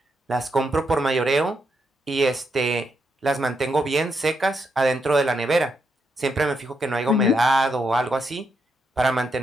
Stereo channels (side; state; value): both; normal; correlation 0.80